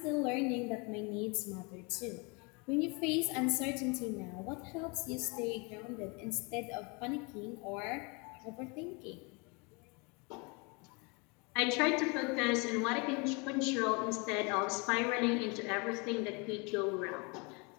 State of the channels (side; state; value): right; quieter; 30.6 dB